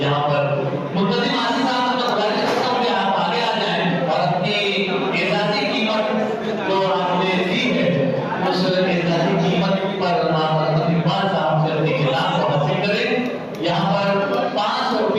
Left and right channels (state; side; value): identical; both; correlation 1.00